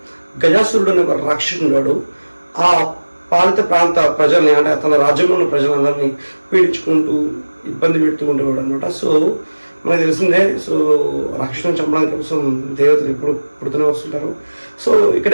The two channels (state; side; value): inverted; both; correlation -1.00